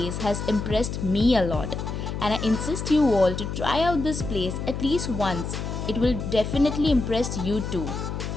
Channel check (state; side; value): noise; left; hum, 5 dB below the sound